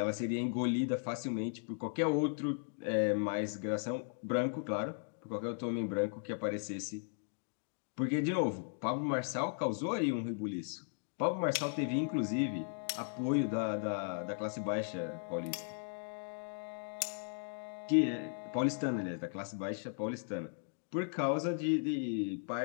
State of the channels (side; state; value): right; silent; digital silence